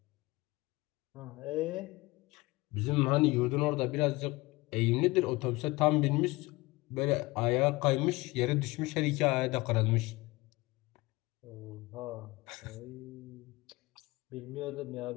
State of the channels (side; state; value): right; quieter; 22.0 dB